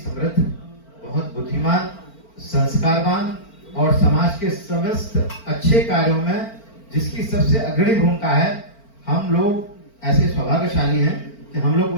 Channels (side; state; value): right; late; 4.4 ms